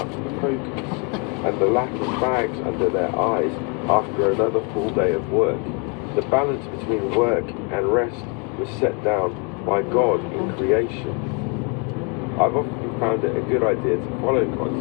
focus and the lack of bags under their eyes after another full day of work, the balance between work and rest was set down by God in creation. I've often found it a good idea to follow God's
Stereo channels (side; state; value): right; quieter; 35.1 dB